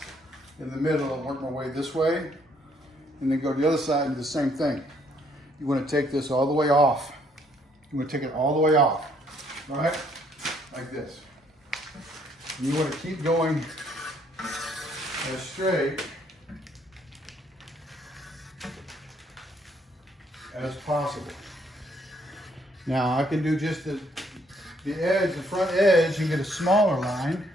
in the middle and work my way this way, and then go to the other side and do the same thing. You want to take this all the way off. You want to take it all the way off, all right? Like this. And you want to keep going as straight as possible. Now I can do just the edge, the front edge, and get a smaller line,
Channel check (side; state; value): both; normal; correlation 0.67